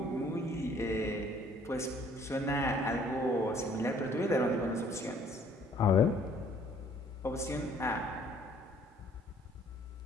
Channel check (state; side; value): normal; both; correlation 0.59